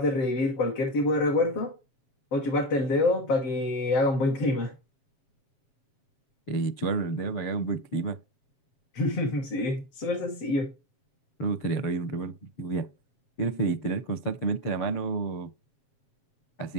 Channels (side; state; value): right; late; 7.4 ms